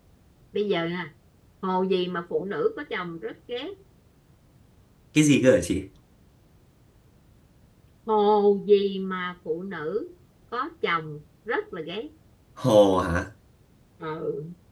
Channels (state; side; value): identical; both; correlation 1.00